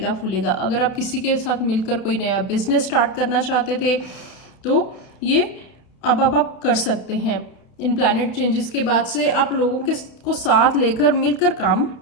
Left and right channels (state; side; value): late; right; 31 ms